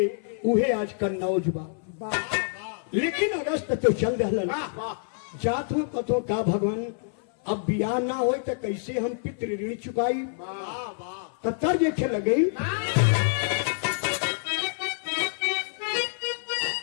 उहे आज कन्नौज बा। लेकिन अगस्त तो चल रहलन जात हो कतो का भगवान अब बियाह ना हो तो कैसे हम पितृ ऋण चुकाई। तब तक देखे लगे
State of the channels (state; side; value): silent; right; 57 dB below the other